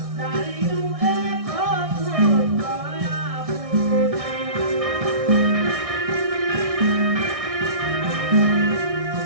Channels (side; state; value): left; late; 1.6 ms